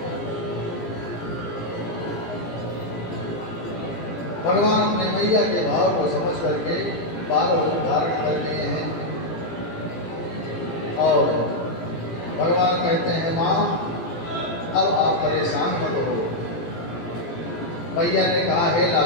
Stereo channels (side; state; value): right; late; 18 ms